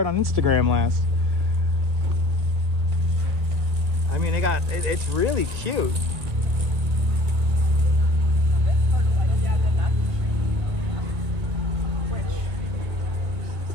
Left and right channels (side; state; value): left; late; 1.8 ms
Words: on Instagram last. I mean, it's really cute.